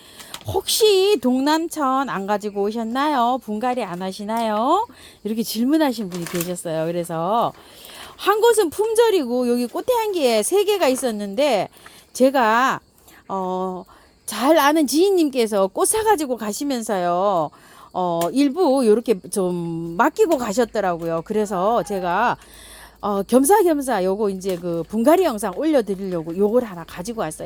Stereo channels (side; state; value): both; identical; correlation 1.00